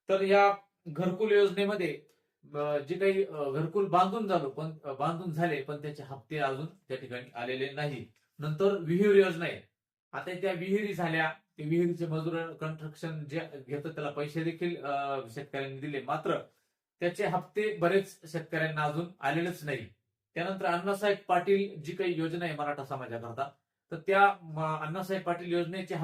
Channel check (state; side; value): identical; both; correlation 1.00